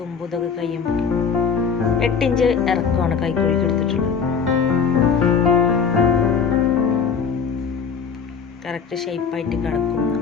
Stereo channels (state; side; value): quieter; right; 6.2 dB